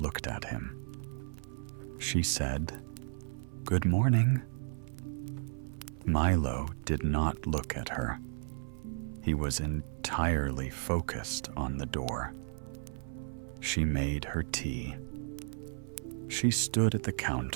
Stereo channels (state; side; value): silent; left; 55 dB below the other